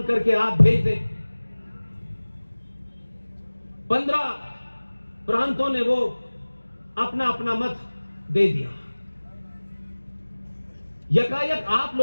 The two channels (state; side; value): inverted; both; correlation -1.00